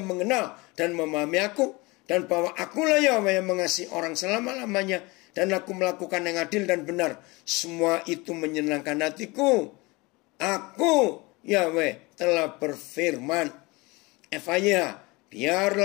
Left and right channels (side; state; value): right; quieter; 24.2 dB